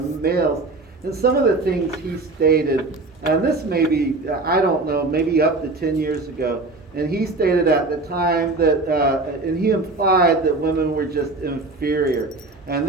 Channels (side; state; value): left; quieter; 3.3 dB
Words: And some of the things he stated, and this may be, I don't know, maybe up to 10 years ago, and he stated at the time that, and he implied that women were just inferior. And